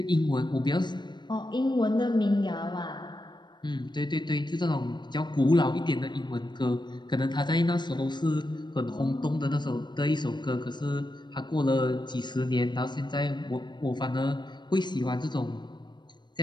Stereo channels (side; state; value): right; late; 0.22 ms